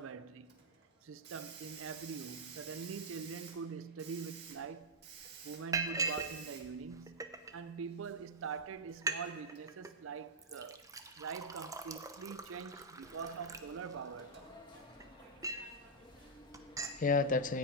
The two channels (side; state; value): both; normal; correlation -0.06